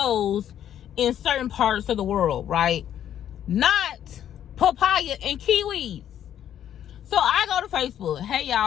in certain parts of the world, right? Not papaya and kiwis. So I go to Facebook. Hey,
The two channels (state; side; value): quieter; right; 10.4 dB